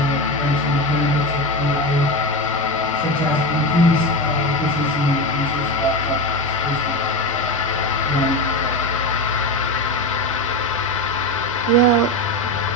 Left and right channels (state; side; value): normal; both; correlation 0.19